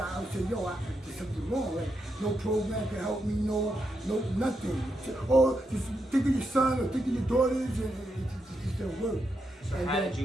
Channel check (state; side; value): normal; both; correlation 0.83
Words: would say, yo, there's something wrong. Like, no program can help me, no nothing. Or just think of your son or think of your daughters, and it just didn't work. So And how then did